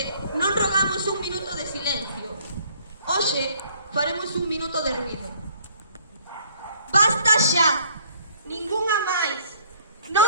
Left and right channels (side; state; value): both; inverted; correlation -0.59